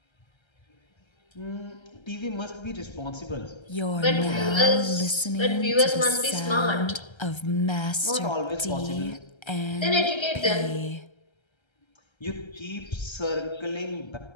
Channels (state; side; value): late; right; 1.3 ms